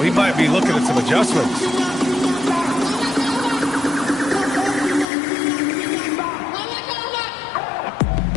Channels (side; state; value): right; drops out; at 5.1 s